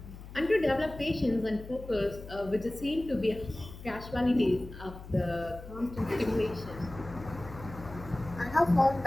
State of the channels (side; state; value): left; noise; hum, 14 dB below the sound